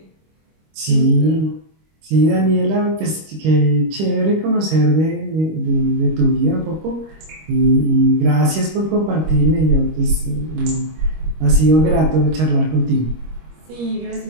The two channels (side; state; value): left; late; 25 ms